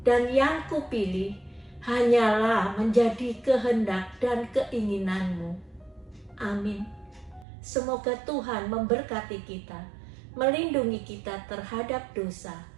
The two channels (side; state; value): left; drops out; at 7.5 s